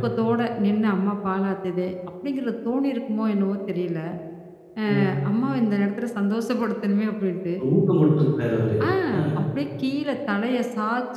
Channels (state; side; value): identical; both; correlation 1.00